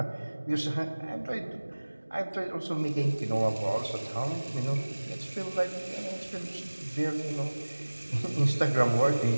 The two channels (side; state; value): both; inverted; correlation -1.00